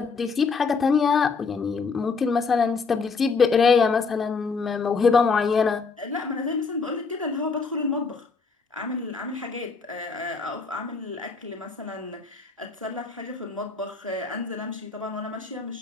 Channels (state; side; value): quieter; right; 4.8 dB